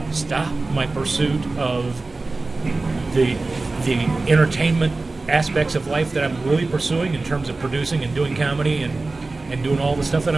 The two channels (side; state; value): left; quieter; 3.4 dB